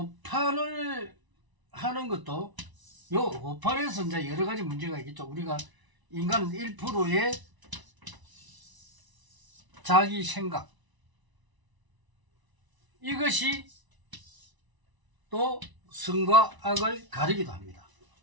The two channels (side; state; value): left; late; 1.0 ms